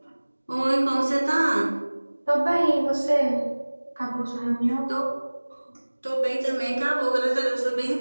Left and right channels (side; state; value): both; inverted; correlation -1.00